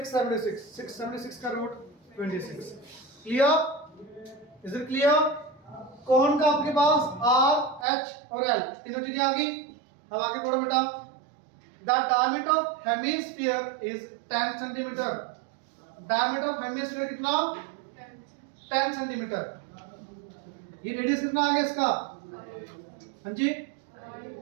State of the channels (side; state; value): left; drops out; at 7.9 s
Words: 676 का root 26। Clear? Is it clear? कौन का आपके पास आर एच और एल तीनों चीजें आ गई। अब आगे पढ़ो बेटा, the diameter of hemisphere is 10 centimetre. Diameter of hemisphere कितना? 10 सेंटीमीटर। ये रेडियस कितना आ गया इसका? हाँ जी